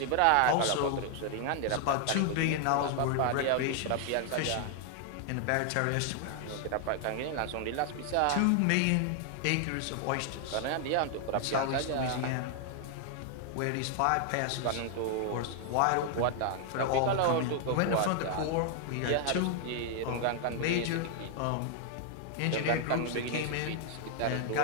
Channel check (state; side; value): different; both; correlation 0.00